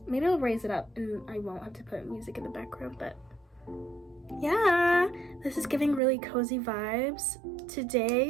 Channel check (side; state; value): left; drops out; at 6.0 s